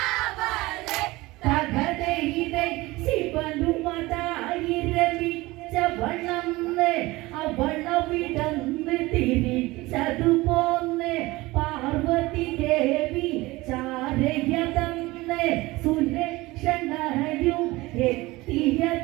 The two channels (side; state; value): left; quieter; 20.5 dB